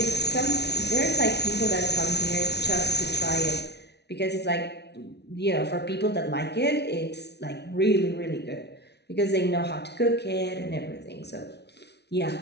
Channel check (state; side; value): late; right; 0.49 ms